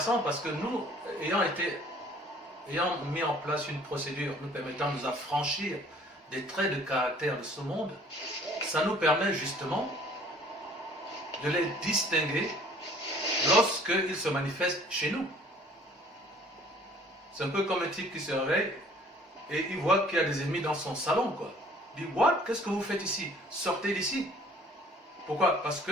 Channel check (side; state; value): both; normal; correlation 0.54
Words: parce que nous, ayant été ayant mis en place une procédure nous permettant de nous affranchir des traits de caractère de ce monde, ça nous permet justement de les distinguer lorsqu'ils se manifestent chez nous. C'est un peu comme un type qui se réveille et il voit qu'il y a des ennemis dans son salon, quoi. Il dit, what? Qu'est-ce que vous faites ici? Sortez d'ici. Pourquoi? Parce